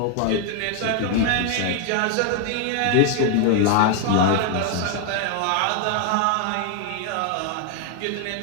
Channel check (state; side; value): different; both; correlation 0.00